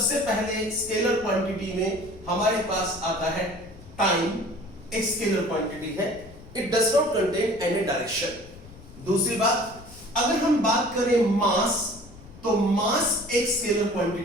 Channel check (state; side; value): noise; left; rumble, 19 dB below the sound